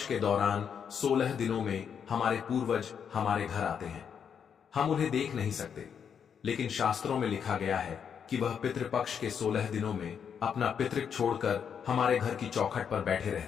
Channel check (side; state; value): right; quieter; 7.4 dB